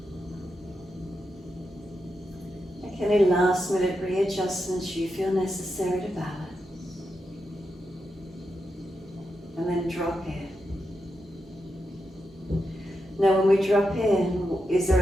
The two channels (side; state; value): both; normal; correlation 0.87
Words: Make any last minute readjustments you feel necessary to balance. And then drop in. Now when we drop in, is there